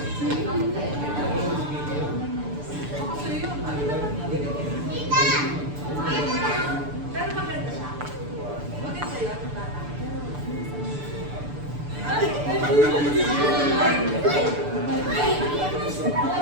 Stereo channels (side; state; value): left; late; 6.8 ms